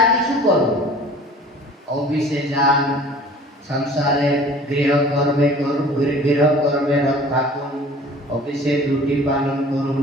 किछु करो, ऑफिसे जान, संसारे गृह कर्मे रत थाकुन, অফিসে ডিউটি পালন করুন,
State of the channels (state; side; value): normal; both; correlation 0.47